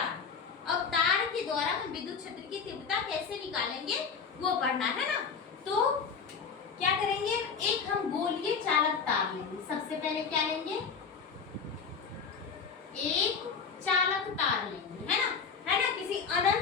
अब तार के द्वारा हम विद्युत क्षेत्र की तीव्रता कैसे निकालेंगे वो पढ़ना है ना। तो क्या करेंगे, एक हम गोलीय चालक तार लेंगे। सबसे पहले क्या लेंगे, एक चालक तार लेंगे, है ना, किसी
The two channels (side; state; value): right; quieter; 5.8 dB